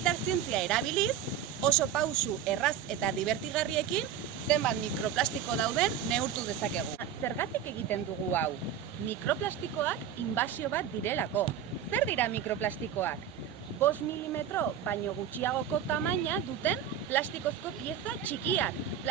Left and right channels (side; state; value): left; quieter; 9.2 dB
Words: zientzia erabiliz, oso pausu erraz eta divertigarriekin zenbat mikroplastiko dauden neurtu dezakegu. Zergatik egiten dugu hau? Mikroplastikoak inbasio bat direlako. Zer dira mikroplastikoak? 5 milimetro baino gutxiagoko tamaina duten plastikozko pieza txikiak.